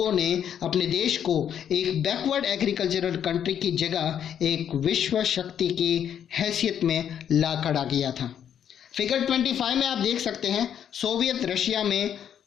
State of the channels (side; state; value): right; quieter; 9.1 dB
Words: ने अपने देश को एक बैकवर्ड एग्रीकल्चरल कंट्री की जगह एक विश्व शक्ति की हैसियत में ला खड़ा किया था। फिगर 25 में आप देख सकते हैं, सोवियत रशिया में